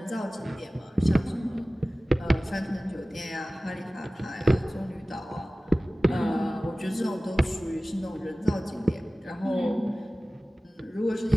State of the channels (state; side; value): normal; both; correlation 0.97